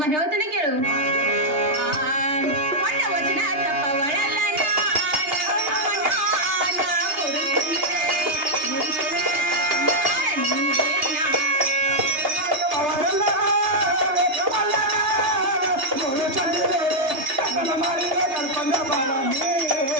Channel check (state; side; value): late; left; 2.8 ms